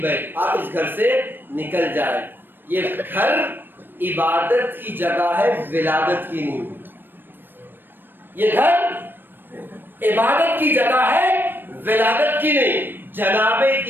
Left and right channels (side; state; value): left; late; 0.095 ms